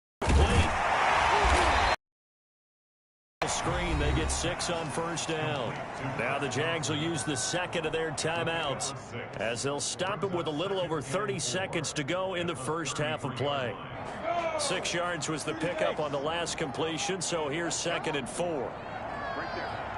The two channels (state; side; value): identical; both; correlation 1.00